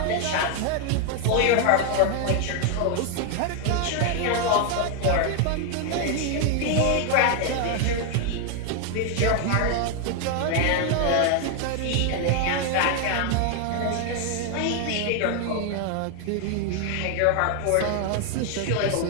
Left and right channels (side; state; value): both; different; correlation 0.00